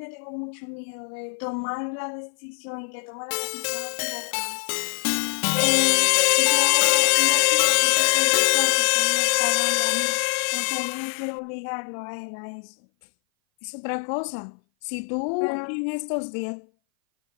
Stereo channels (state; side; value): silent; right; 58 dB below the other